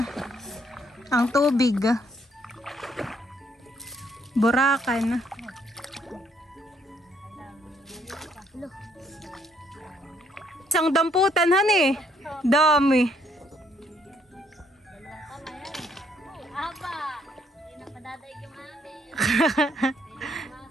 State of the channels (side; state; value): both; normal; correlation 0.69